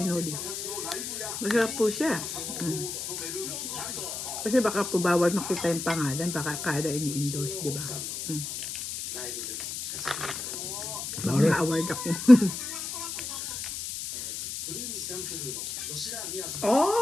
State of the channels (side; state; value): left; noise; hiss, 6 dB below the sound